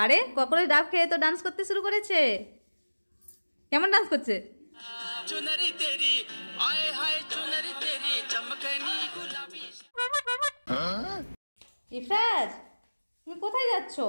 কখনো ডাব খেয়ে তো ডান্স করতে শুরু করেছে। কেমন ডান্স করছে? चुनरी तेरी आए हाय चुनरी तेरी चमकनी गुलाबी। ইফরাজ, তুমি কোথায় যাচ্ছ?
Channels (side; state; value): both; inverted; correlation -1.00